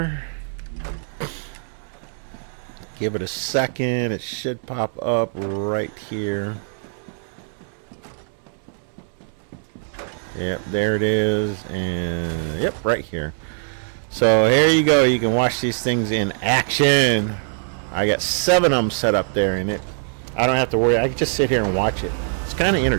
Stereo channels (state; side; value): silent; left; 62 dB below the other